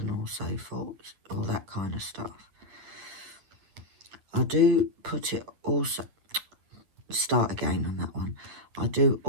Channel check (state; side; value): late; left; 9.4 ms